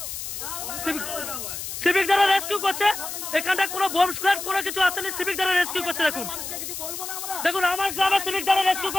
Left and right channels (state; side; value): noise; left; hiss, 7 dB below the sound